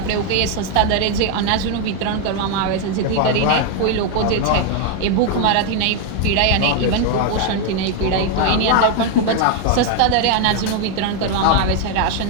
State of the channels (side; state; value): both; different; correlation 0.01